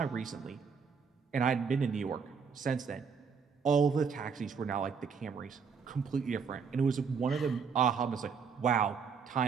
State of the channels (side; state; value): left; quieter; 5.9 dB